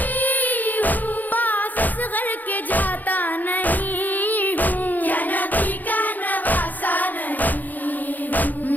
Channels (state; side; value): late; right; 0.084 ms